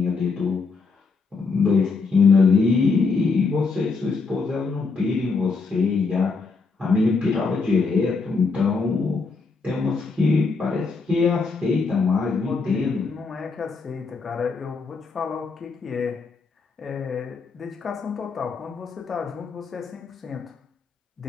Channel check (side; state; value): right; quieter; 4.5 dB